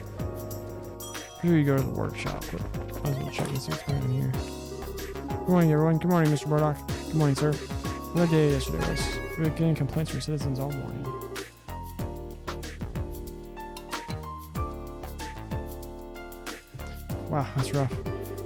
Here you go to the workshop, but I was gonna check and see what's going on here. Good morning, everyone. Good morning, Mr. Murdoch. Good morning, sir. What day yesterday was? We were getting complaints from citizens all morning. Wow, that's rough.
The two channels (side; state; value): both; identical; correlation 1.00